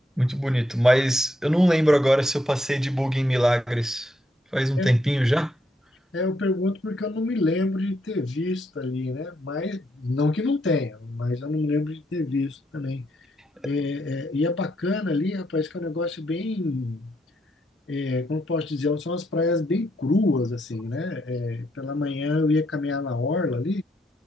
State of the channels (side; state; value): both; normal; correlation 0.76